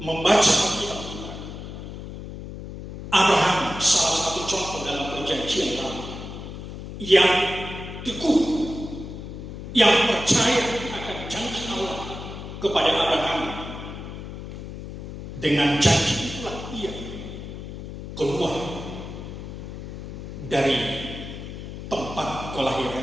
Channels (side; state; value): left; noise; hum, 10 dB below the sound